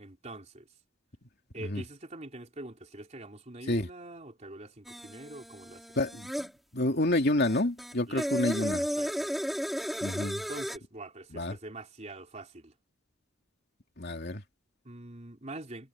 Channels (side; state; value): both; normal; correlation 0.55